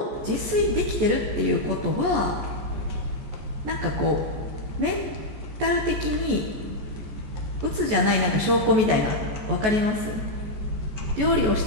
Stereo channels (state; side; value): late; left; 14 ms